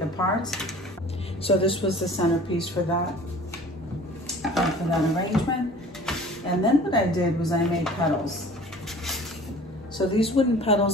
apart. So this was the centerpiece for that arrangement. And then what I did was I made petals. So these wooden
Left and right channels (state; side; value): normal; both; correlation 0.46